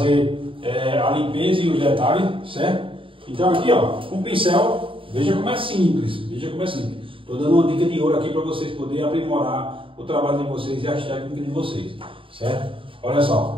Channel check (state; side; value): late; left; 0.25 ms